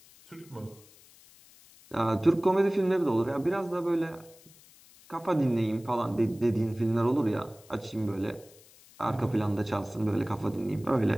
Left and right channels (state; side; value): noise; left; hiss, 25 dB below the sound